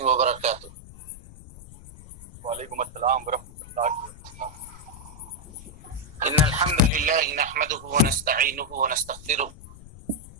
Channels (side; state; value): left; noise; rumble, 18 dB below the sound